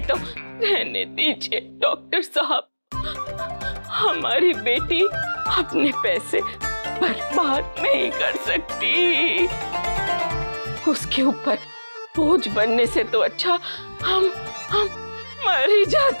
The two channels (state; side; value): inverted; both; correlation -1.00